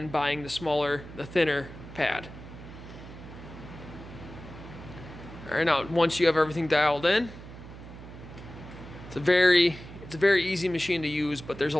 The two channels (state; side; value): noise; right; hum, 14 dB below the sound